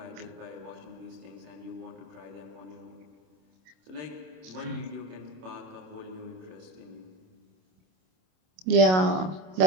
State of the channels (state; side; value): late; left; 27 ms